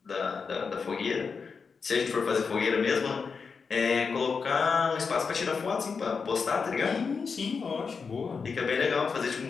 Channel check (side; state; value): right; quieter; 5.4 dB